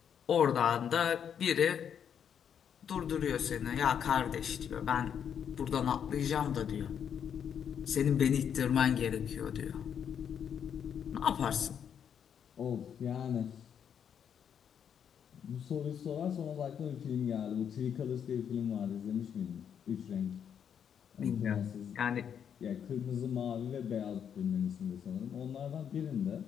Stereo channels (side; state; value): right; quieter; 8.2 dB